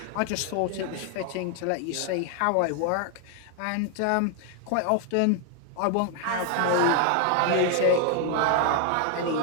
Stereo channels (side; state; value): both; different; correlation 0.00